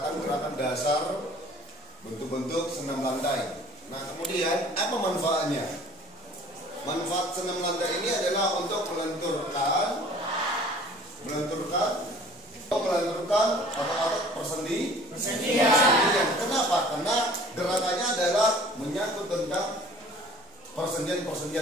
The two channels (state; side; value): normal; both; correlation 0.50